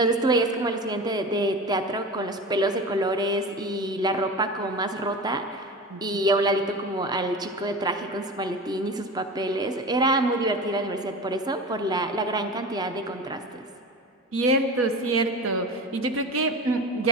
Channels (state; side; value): normal; both; correlation 0.30